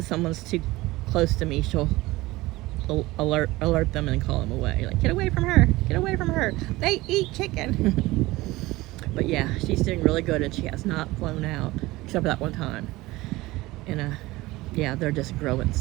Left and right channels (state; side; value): quieter; left; 19.5 dB